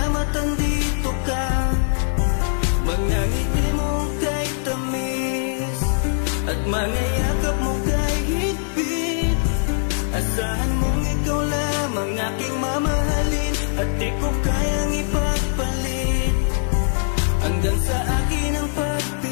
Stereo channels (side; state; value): right; silent; digital silence